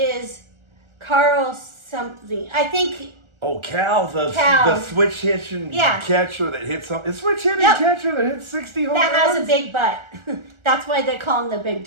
Carl something. I think. Oh, Cal, the switch hitting catcher that hits something. The switch hitting catcher that hits 60 home runs. That has a big butt. That's why they call him the big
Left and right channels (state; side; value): late; left; 1.4 ms